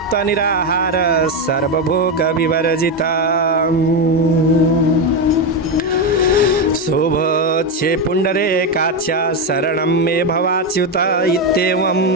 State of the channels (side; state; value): both; normal; correlation 0.09